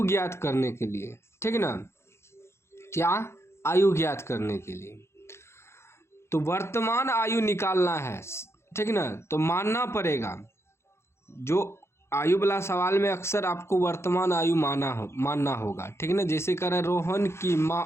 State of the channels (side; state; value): right; late; 0.13 ms